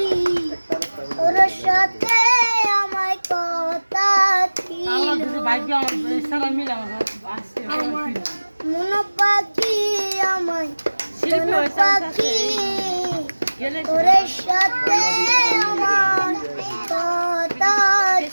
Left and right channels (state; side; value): inverted; both; correlation -1.00